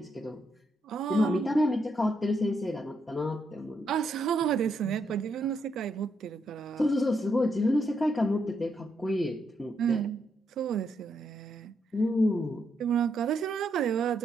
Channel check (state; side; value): normal; both; correlation 0.78